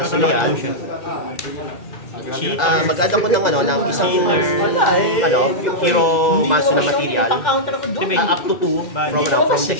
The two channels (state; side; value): late; right; 2.0 ms